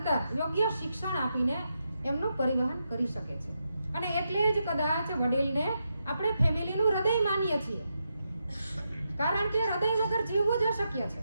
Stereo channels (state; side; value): inverted; both; correlation -0.84